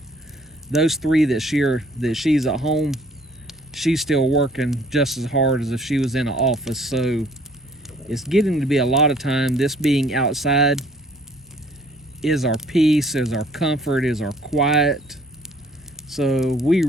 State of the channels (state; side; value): normal; both; correlation 0.58